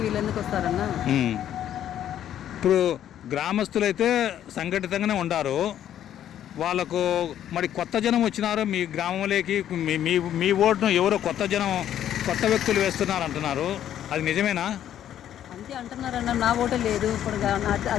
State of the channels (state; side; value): quieter; right; 10.9 dB